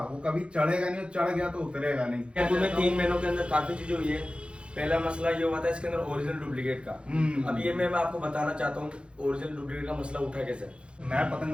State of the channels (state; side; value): late; left; 0.057 ms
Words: वो कभी चढ़ेगा नहीं, चढ़ गया तो उतरेगा नहीं। क्या तुम्हें 3 महीनों के अंदर काफी चीजें हुई है। पहला मसला ये हुआ था इसके अंदर ओरिजिनल डुप्लीकेट का। अब ये मैं आपको बताना चाहता हूँ ओरिजिनल डुप्लीकेट का मसला उठा कैसे। मैं